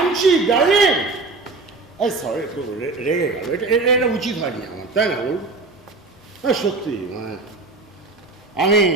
ডার্লিং। এই সরি, একটু রেগে গেল, এটা উচিত হয়নি আমার, তাই না বল? সত্যি মানে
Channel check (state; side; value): quieter; left; 3.6 dB